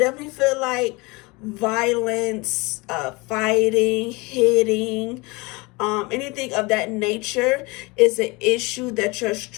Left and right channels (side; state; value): right; quieter; 25.3 dB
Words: feel like violence, fighting, hitting, anything of that nature is an issue that you're